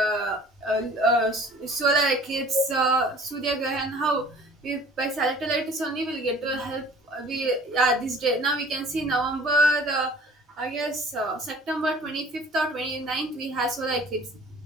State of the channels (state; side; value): normal; both; correlation 0.49